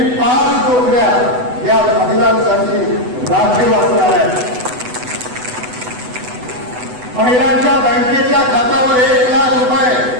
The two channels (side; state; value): left; late; 8.0 ms